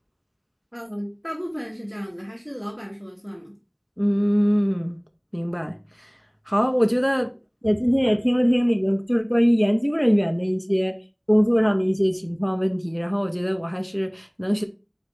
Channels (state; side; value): identical; both; correlation 1.00